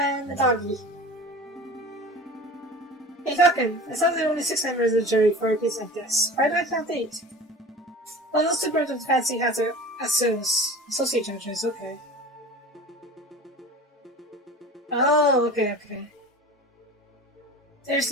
a doggy. Hey Falcon, it sounds like only 6 members of the jury for a case like this. Why do I count 8? Well, those 2 birds with fancy hats are associate judges, okay. Oh, okay. There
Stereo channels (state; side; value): normal; both; correlation 0.37